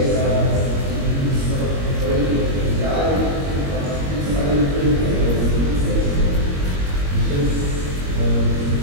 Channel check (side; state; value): left; late; 21 ms